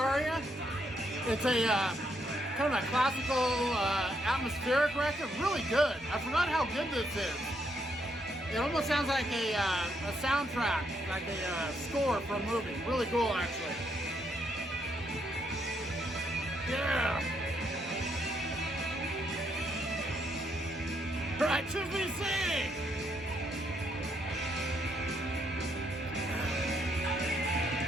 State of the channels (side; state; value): both; normal; correlation 0.75